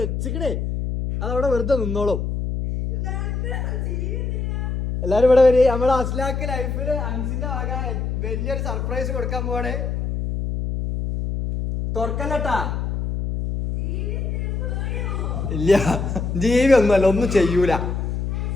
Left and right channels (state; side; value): noise; left; hum, 2 dB below the sound